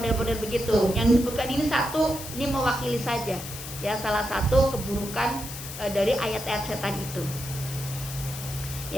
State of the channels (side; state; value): left; noise; hiss, 10 dB below the sound